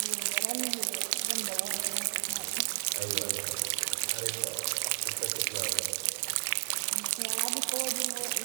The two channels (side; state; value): left; silent; digital silence